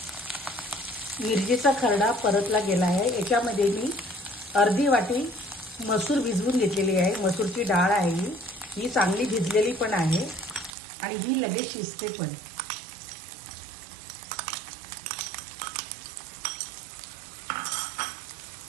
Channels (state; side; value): drops out; left; at 10.7 s